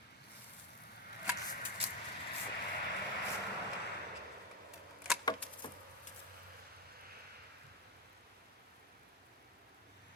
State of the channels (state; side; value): normal; both; correlation 0.08